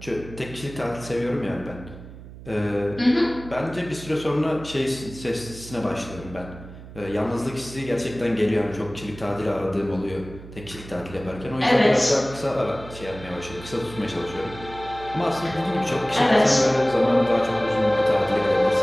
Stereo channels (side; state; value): right; noise; hum, 15 dB below the sound